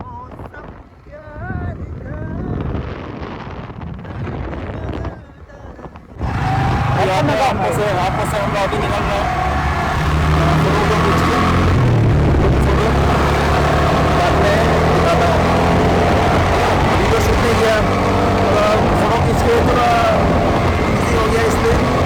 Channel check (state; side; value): identical; both; correlation 1.00